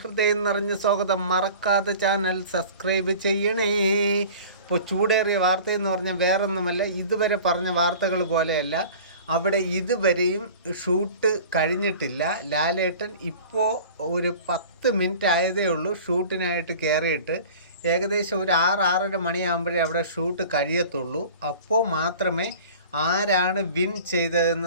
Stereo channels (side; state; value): both; inverted; correlation -0.42